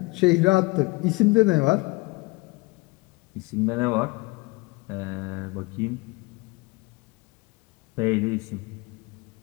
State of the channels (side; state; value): right; quieter; 23.9 dB